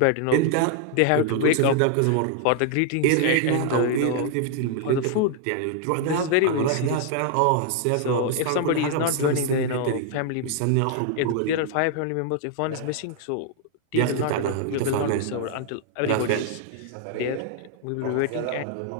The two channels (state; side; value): different; both; correlation 0.00